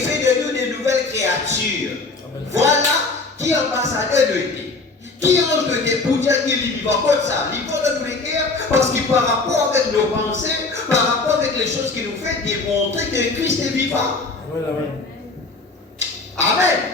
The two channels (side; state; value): right; quieter; 3.7 dB